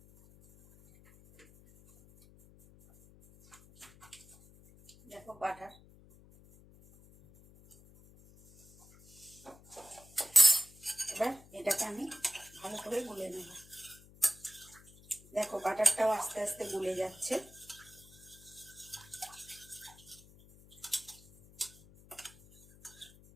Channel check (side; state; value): left; noise; hum, 23 dB below the sound